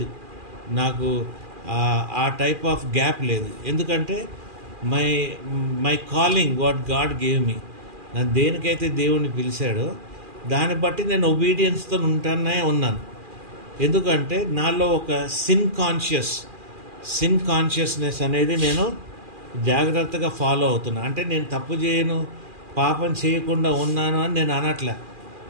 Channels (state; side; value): late; left; 2.4 ms